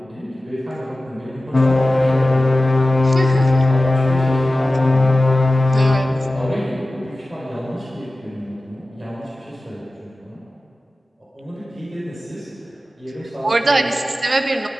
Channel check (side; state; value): both; normal; correlation 0.95